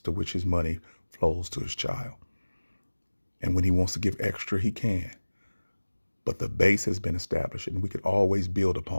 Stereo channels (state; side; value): inverted; both; correlation -1.00